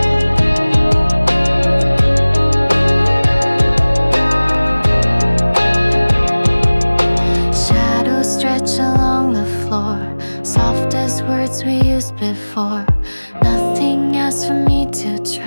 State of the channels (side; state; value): both; inverted; correlation -1.00